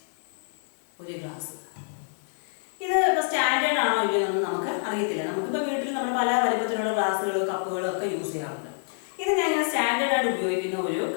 ഒരു ഗ്ലാസ് ഇത് ഇപ്പോൾ സ്റ്റാൻഡേർഡ് ആണോ ഇല്ലയോ എന്നൊന്നും നമുക്ക് അറിയത്തില്ല. നമുക്കിപ്പോൾ വീട്ടിൽ നമ്മൾ പല വലുപ്പത്തിലുള്ള ഗ്ലാസ്സുകളും കപ്പുകളും ഒക്കെ യൂസ് ചെയ്യാറുണ്ട്. ഇത് ഞാൻ സ്റ്റാൻഡേർഡ് ആയിട്ട് ഉപയോഗിക്കുന്ന ഒരു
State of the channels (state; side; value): silent; right; digital silence